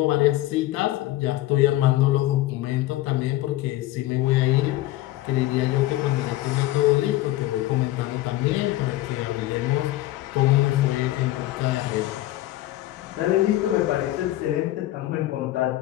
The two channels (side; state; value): right; quieter; 16.0 dB